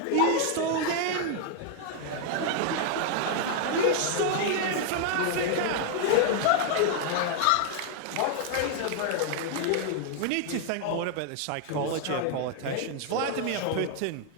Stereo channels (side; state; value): both; different; correlation 0.00